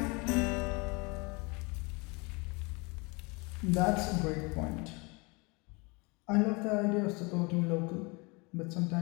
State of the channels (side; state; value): right; quieter; 28.3 dB